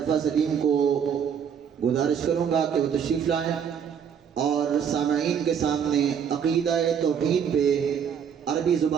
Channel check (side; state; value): left; quieter; 7.7 dB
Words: सलीम को गुजारिश करूँगा कि वो तशरीफ़ लाएँ और सामईन के सामने अक़ीदा-ए तौहीद पे अरबी